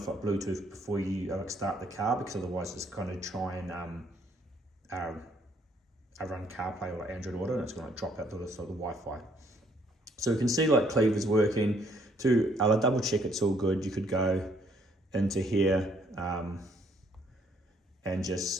like Bluetooth before you start the car, because otherwise it's going to try and run CarPlay or Android Auto, and it's going to drop out the Wi-Fi. So you can see like Cleaver's working. To double check it's all good, you could go into here and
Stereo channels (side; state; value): both; normal; correlation 0.67